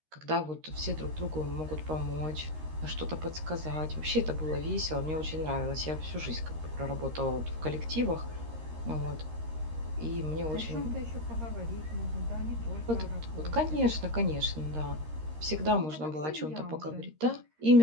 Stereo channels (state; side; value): late; left; 13 ms